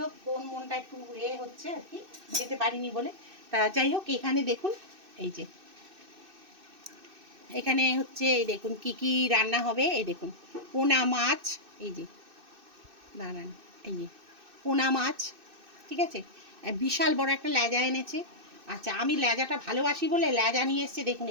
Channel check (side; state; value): left; late; 2.6 ms